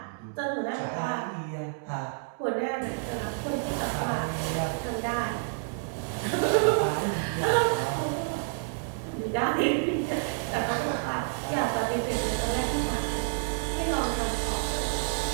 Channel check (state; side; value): silent; left; digital silence